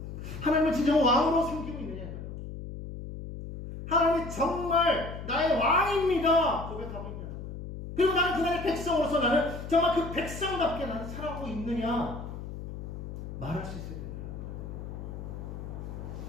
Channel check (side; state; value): left; noise; hum, 9 dB below the sound